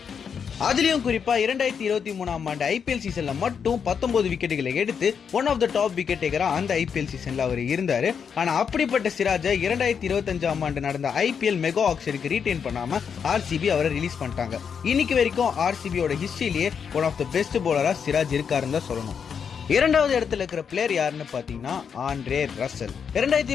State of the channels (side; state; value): right; quieter; 6.9 dB